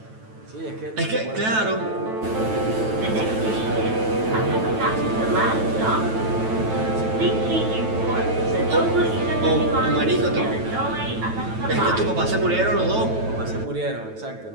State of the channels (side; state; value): left; late; 9.1 ms